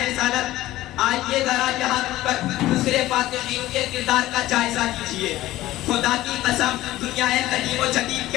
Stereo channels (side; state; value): right; quieter; 15.9 dB